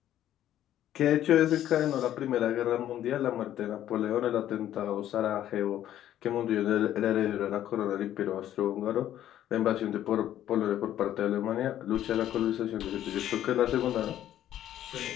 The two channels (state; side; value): quieter; right; 11.9 dB